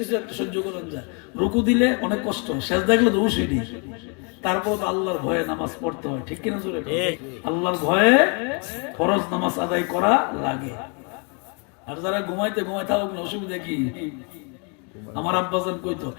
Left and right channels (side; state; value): right; quieter; 35.9 dB